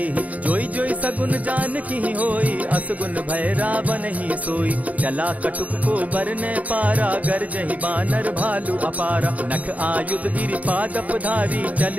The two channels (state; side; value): late; left; 0.071 ms